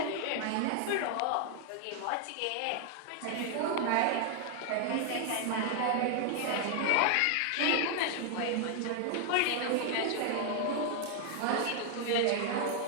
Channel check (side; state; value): both; different; correlation 0.00